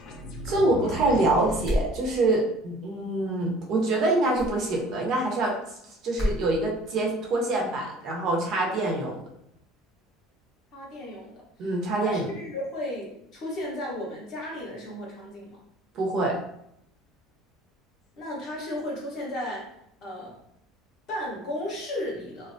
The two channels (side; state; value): both; normal; correlation 0.50